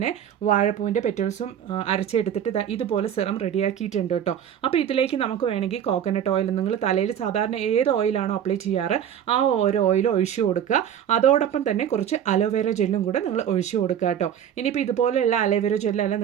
വാഴപ്പൂവിൻ്റെ പെറ്റൽസും അരച്ചെടുത്തിട്ട് ഇതുപോലെ സിറം റെഡിയാക്കിയിട്ടുണ്ട് കേട്ടോ. അപ്പോൾ ഇതിലേക്ക് നമുക്ക് വേണമെങ്കിൽ കോക്കനട്ട് ഓയിൽ, നിങ്ങൾ തലയിൽ സാധാരണ ഏത് ഓയിലാണോ അപ്ലൈ ചെയ്യാറ് ആ ഓരോ ഓയിൽ ഒഴിച്ചു കൊടുക്കുക. അതോടൊപ്പം തന്നെ കുറച്ച് അലോവേര ജെല്ലും കൂടെ നിങ്ങൾ ഒഴിച്ചു കൊടുക്കുക കേട്ടോ. ഇനിയിപ്പോൾ ഇതുപോലെയുള്ള അലോവേര ജെല്ലല്ല,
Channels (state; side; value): quieter; left; 9.4 dB